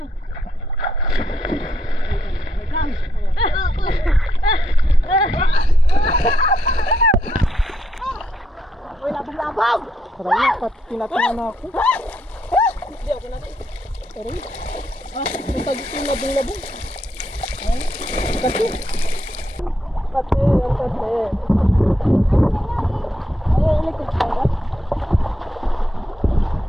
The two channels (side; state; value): both; normal; correlation 0.78